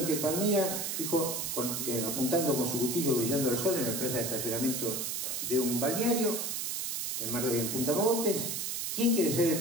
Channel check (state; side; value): noise; right; hiss, 2 dB below the sound